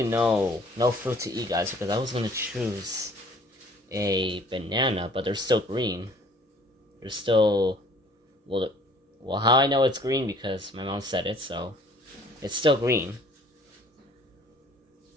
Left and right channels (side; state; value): both; normal; correlation 0.55